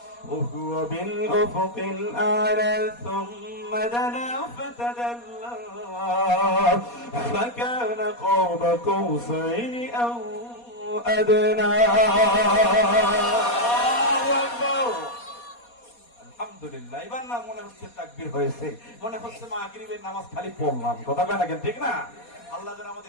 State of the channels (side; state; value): right; late; 4.2 ms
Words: وهو بالأفق الأعلى ثم دنا فتدلى فكان قاب قوسين أو أدنى. আলহামদুলিল্লাহ। এবার না মনে হচ্ছে তাকবীর হয়েছে, মনে হচ্ছে মাগরিবের নামাজ খালি পড়লাম। কথা কয় না কেন? ঠিক না? আল্লাহ যেন